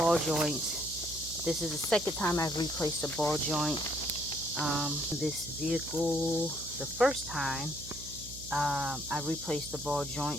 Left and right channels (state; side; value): noise; right; hum, 14 dB below the sound